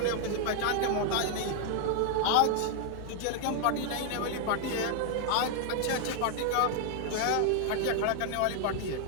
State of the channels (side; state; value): both; different; correlation 0.00